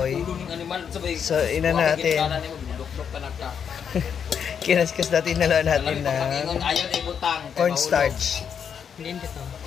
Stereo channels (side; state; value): right; quieter; 7.5 dB